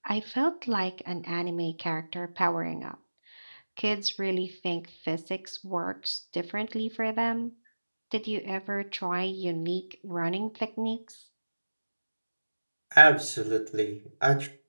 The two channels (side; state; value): both; inverted; correlation -1.00